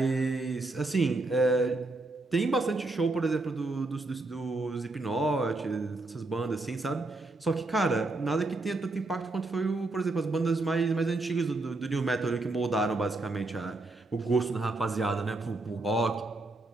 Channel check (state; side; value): quieter; left; 3.0 dB